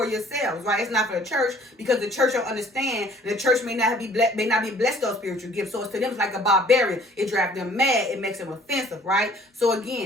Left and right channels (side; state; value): both; normal; correlation 0.56